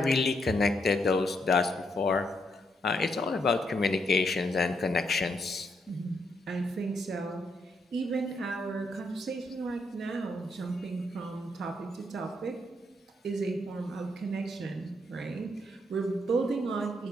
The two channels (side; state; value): both; normal; correlation 0.77